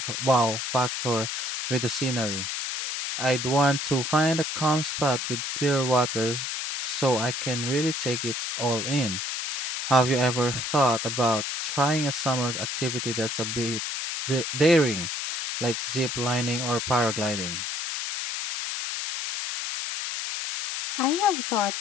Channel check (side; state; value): left; noise; hiss, 3 dB below the sound